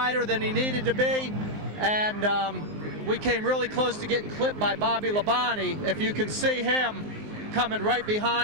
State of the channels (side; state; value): left; late; 19 ms